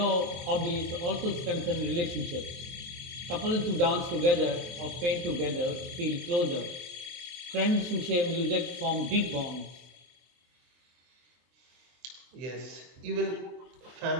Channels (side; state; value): left; late; 23 ms